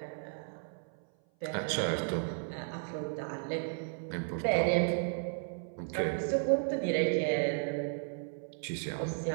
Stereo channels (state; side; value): silent; left; 55 dB below the other